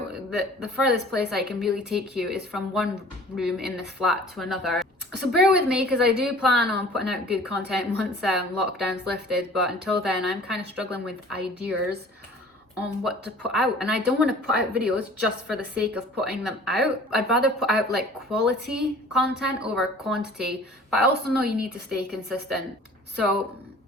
furthest place I can really take you is from one room in this flat to another. So bear with me, because I do plan on putting out good content once lockdown's lifted, but until then I'm kind of struggling with ideas on what to put out, and I don't want to put out videos just for the sake of putting them out. I'd rather put out like quality content over quantity, but I also know you need to stay consistent. So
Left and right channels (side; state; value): both; normal; correlation 0.48